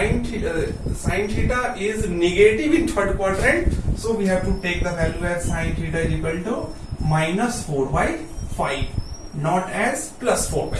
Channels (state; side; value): identical; both; correlation 1.00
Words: theta is negative in third quadrant, so we have to take the value as sin theta is equal to minus 4 by 5, not as plus 4 by